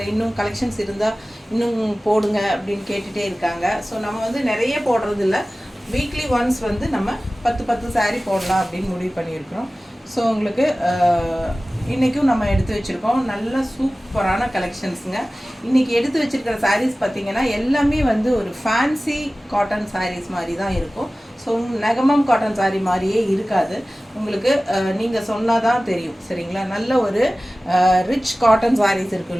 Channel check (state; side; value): normal; both; correlation 0.97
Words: இன்னும் கலெக்ஷன்ஸ் இருந்தால் இன்னும் போடுங்க அப்படின்னு கேட்டுகிட்டே இருக்காங்க. ஸோ நம்ம வந்து நிறைய போடுறது இல்லை, வீக்லி ஒன்ஸ் வந்து நம்ம 10 சாரீ போடலாம் அப்படின்னு முடிவு பண்ணியிருக்கிறோம். ஸோ உங்களுக்கு இன்றைக்கும் நம்ம எடுத்து வச்சுருக்கோம் நல்ல சூப்பரான கலெக்ஷன்ஸுங்க. இன்றைக்கி எடுத்து வச்சுருக்கிற சாரீஸ் பார்த்திங்கன்னா எல்லாமே வந்து ஒரு ஃபேன்சி காட்டன் சாரீஸ் மாதிரி தான் இருக்கும். ஸோ நெகமம் காட்டன் சாரீ மாதிரியே இருக்காது உங்களுக்கு. நீங்கள் சொன்னால் தான் தெரியும், சரிங்களா? நல்ல ஒரு ரிச் காட்டன் சாரீஸ் இருக்கும்